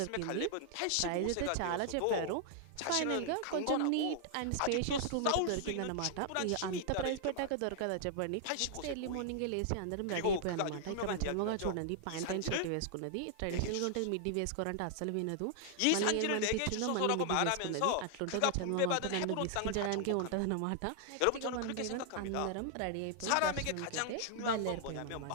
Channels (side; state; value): both; different; correlation 0.00